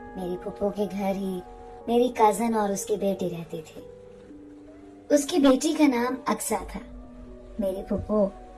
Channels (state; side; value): identical; both; correlation 1.00